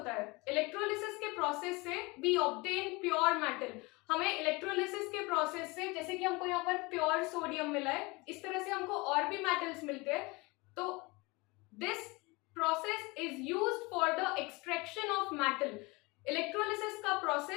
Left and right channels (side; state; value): right; quieter; 25.0 dB